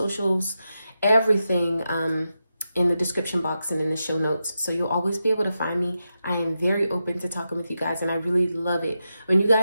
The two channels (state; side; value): inverted; both; correlation -0.89